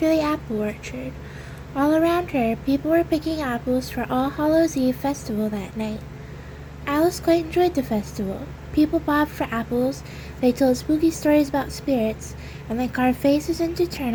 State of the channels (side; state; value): both; identical; correlation 1.00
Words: the apple orchard. All around her, people were picking apples for All Hallows' Eve festival that night. Alice quite enjoyed the festival. People bobbed for apples, they told spooky stories about spirits, and they carved faces into